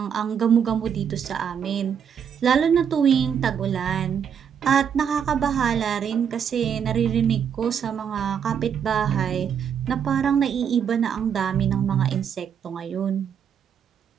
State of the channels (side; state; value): left; quieter; 7.9 dB